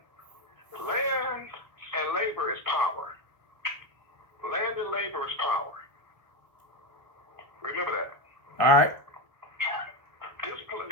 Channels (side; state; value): left; late; 1.3 ms